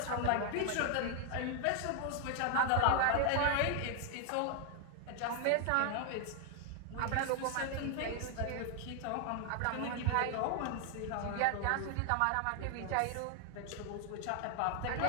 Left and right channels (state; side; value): different; both; correlation 0.00